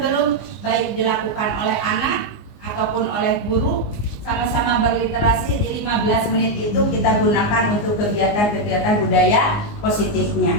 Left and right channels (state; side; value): late; right; 19 ms